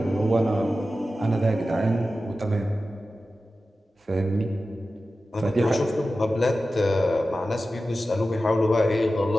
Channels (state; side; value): normal; both; correlation 0.94